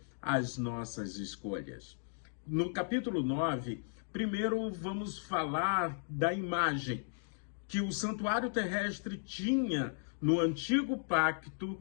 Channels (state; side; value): silent; right; digital silence